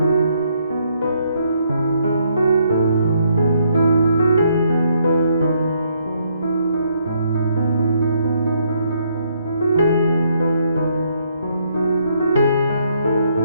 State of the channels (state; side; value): inverted; both; correlation -0.72